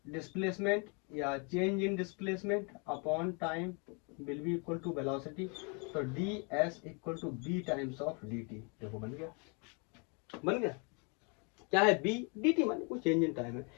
डिस्प्लेसमेंट या change in displacement upon time will be equal to velocity, तो d s equal to v times of d t. देखो बन गया, बन गया। क्या है बी डी टी, माने कोई चेंज इन टाइम है।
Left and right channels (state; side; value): quieter; right; 34.7 dB